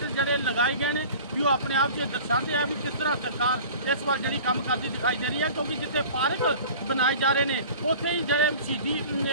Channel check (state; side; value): inverted; both; correlation -0.42